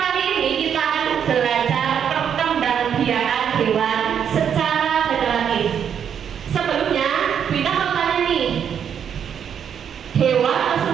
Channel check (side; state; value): left; quieter; 8.2 dB